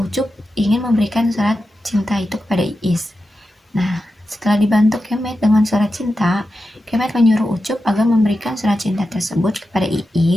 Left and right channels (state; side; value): normal; both; correlation 0.90